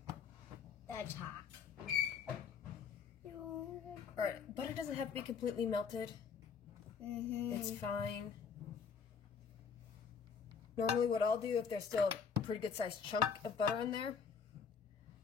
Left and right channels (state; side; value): quieter; right; 6.3 dB